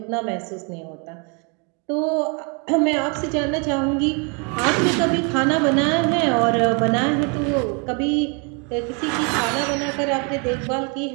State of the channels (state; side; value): quieter; left; 34.8 dB